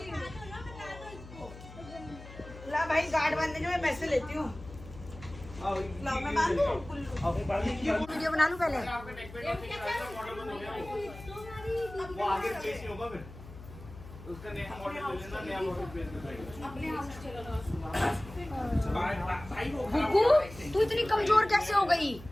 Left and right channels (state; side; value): noise; left; hum, 16 dB below the sound